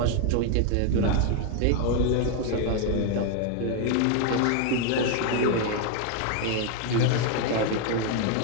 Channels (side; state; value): both; different; correlation 0.00